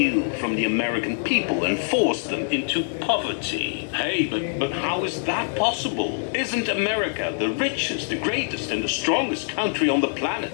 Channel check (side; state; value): right; silent; digital silence